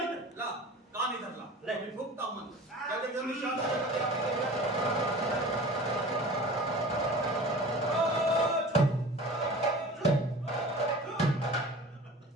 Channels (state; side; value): normal; both; correlation 0.39